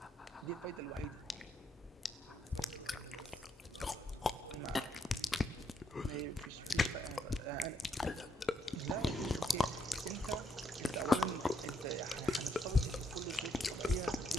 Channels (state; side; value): normal; both; correlation 0.75